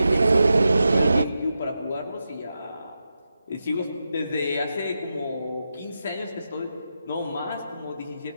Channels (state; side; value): inverted; both; correlation -0.89